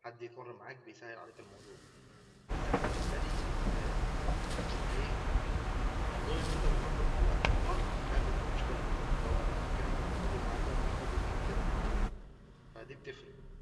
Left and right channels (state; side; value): identical; both; correlation 1.00